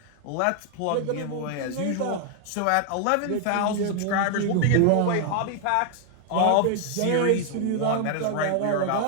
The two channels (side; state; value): both; different; correlation 0.00